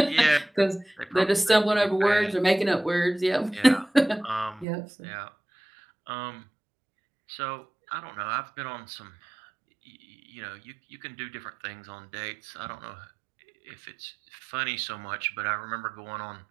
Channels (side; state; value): left; drops out; at 4.7 s